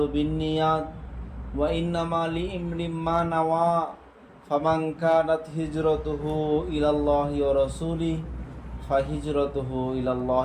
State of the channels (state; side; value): identical; both; correlation 1.00